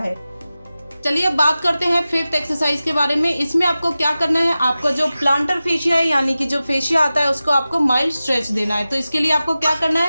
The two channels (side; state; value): both; inverted; correlation -0.95